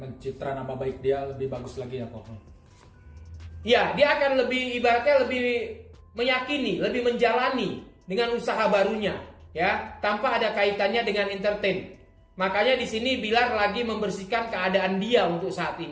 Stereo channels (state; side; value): identical; both; correlation 1.00